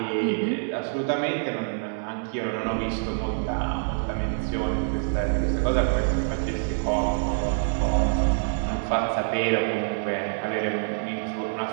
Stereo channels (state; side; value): silent; left; 61 dB below the other